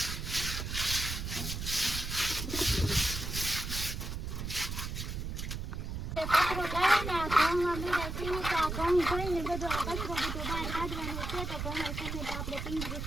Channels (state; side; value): noise; right; rumble, 4 dB below the sound